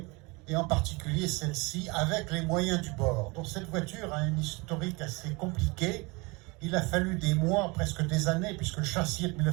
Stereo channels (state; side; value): quieter; left; 26.5 dB